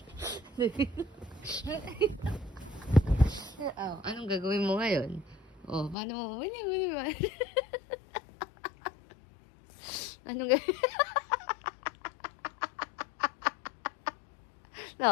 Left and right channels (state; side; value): drops out; right; at 6.0 s